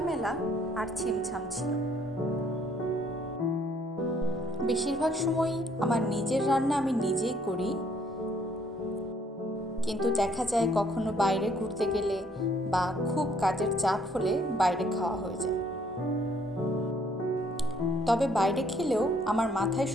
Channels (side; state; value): both; normal; correlation 0.65